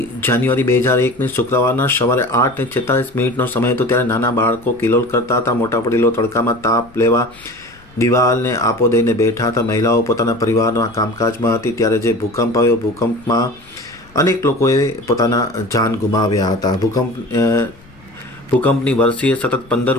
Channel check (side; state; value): left; noise; rumble, 26 dB below the sound